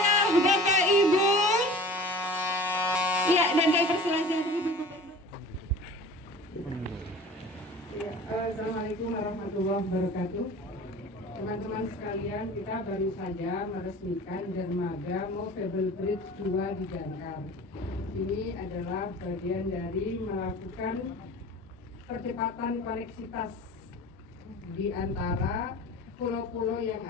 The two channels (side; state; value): both; normal; correlation 0.41